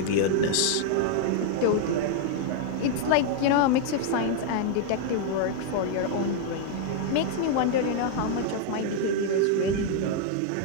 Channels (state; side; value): different; both; correlation 0.00